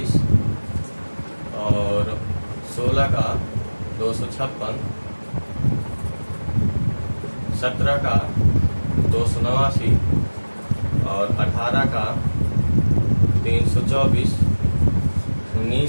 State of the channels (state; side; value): inverted; both; correlation -1.00